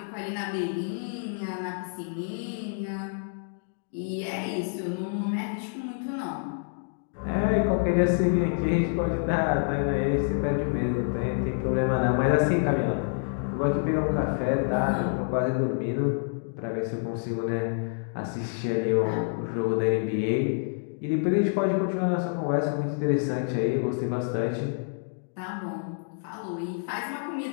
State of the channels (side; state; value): right; silent; digital silence